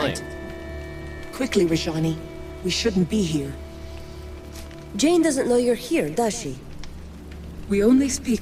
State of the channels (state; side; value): identical; both; correlation 1.00